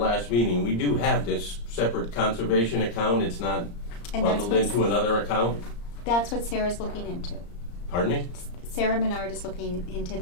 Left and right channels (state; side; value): late; right; 34 ms